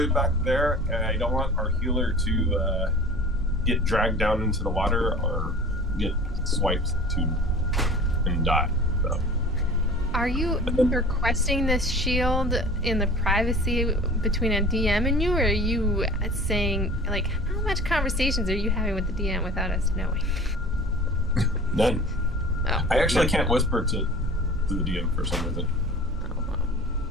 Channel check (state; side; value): normal; both; correlation 0.42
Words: back there, and I don't want our healer to get dragged down into the water or get swiped and die. So Are you requesting this shield in the privacy between a DM and you, or are you saying, like, how much conversations are you having with the DM without us knowing? none. Oh. I actually can't whisper to the DM for some reason.